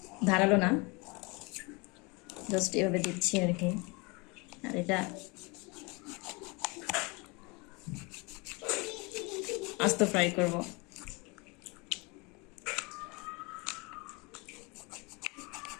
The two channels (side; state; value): right; quieter; 27.9 dB